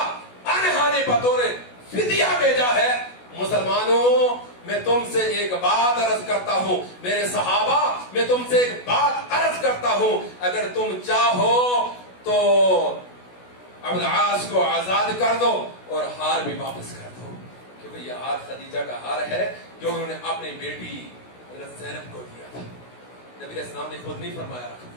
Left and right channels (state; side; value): late; right; 16 ms